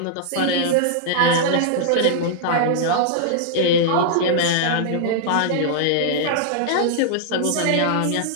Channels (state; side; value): different; both; correlation -0.01